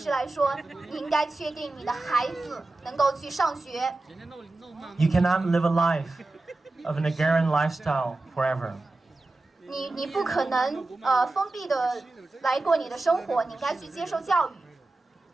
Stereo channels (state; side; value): quieter; left; 3.1 dB